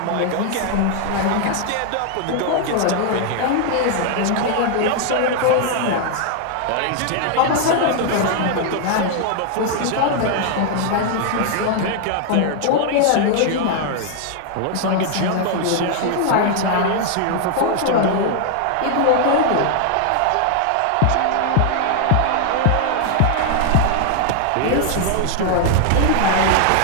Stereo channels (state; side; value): different; both; correlation 0.00